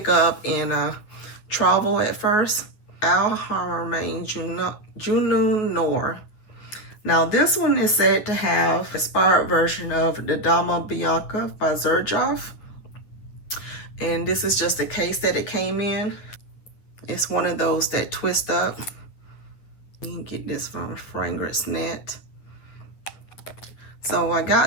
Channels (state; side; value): late; right; 9.9 ms